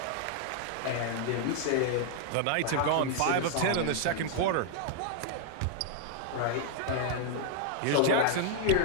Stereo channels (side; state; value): both; different; correlation -0.01